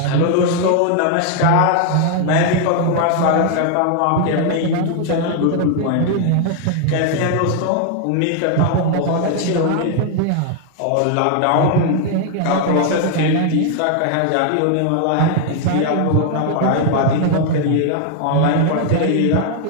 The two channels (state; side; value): different; both; correlation 0.00